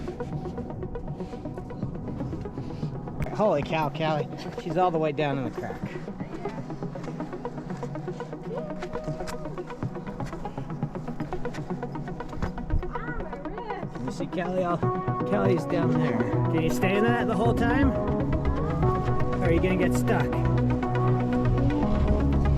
Holy cow, Callie. She's all the way down in the crack. Let me see Kelly's down there. Can you stay in that the whole time? Or are you gonna get stuck?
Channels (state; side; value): identical; both; correlation 1.00